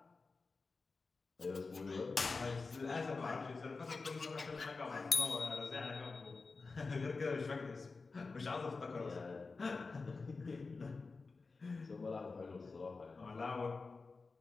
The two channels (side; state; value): right; quieter; 4.1 dB